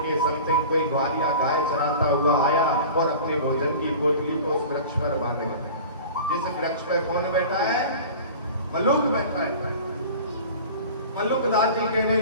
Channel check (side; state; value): both; inverted; correlation -0.38